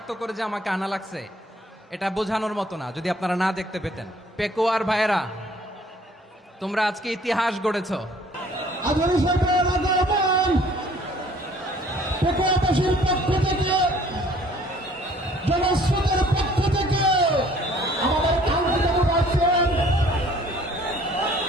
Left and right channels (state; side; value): normal; both; correlation 0.56